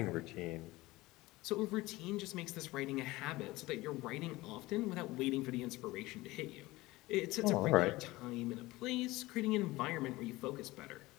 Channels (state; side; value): quieter; right; 19.7 dB